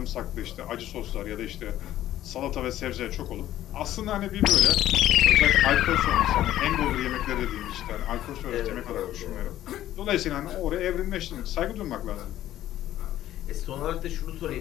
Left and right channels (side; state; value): right; quieter; 13.1 dB